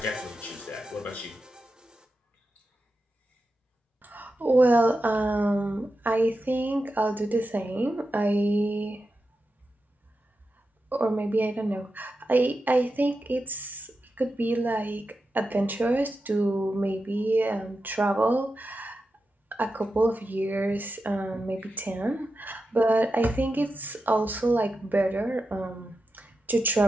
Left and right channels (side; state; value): both; normal; correlation 0.90